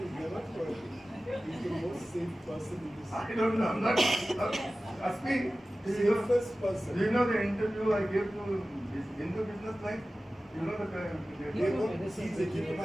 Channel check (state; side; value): normal; both; correlation 0.96